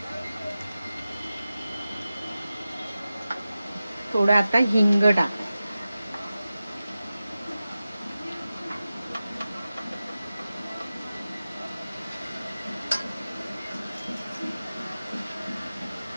थोडं आता हिंग टाक.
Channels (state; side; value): inverted; both; correlation -0.94